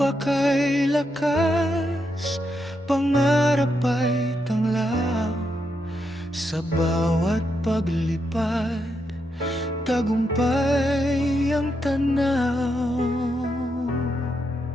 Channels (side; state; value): both; normal; correlation 0.82